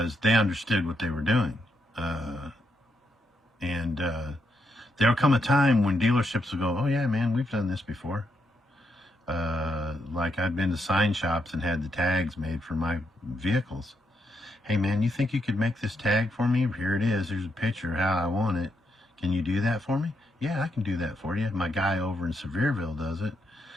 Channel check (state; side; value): normal; both; correlation 0.80